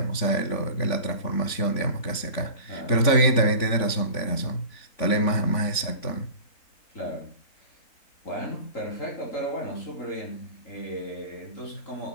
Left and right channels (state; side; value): late; right; 3.5 ms